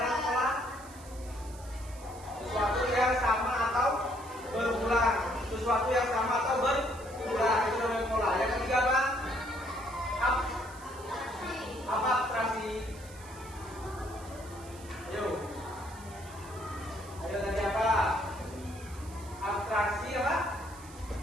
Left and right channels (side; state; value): right; noise; hiss, 19 dB below the sound